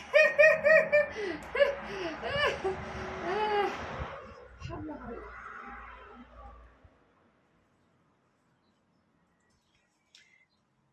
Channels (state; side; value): identical; both; correlation 1.00